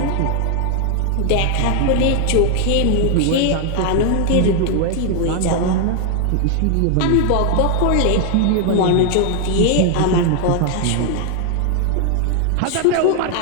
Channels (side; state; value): both; different; correlation 0.00